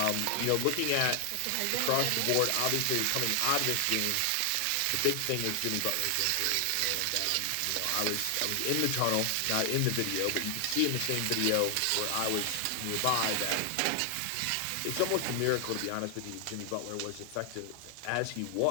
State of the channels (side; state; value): both; different; correlation 0.00